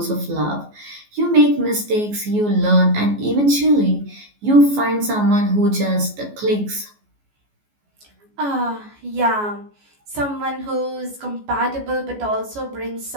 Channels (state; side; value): late; left; 14 ms